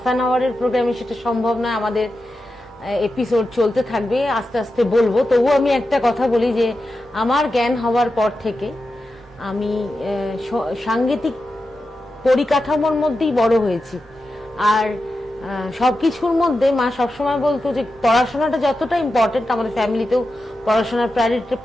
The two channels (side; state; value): both; normal; correlation 0.90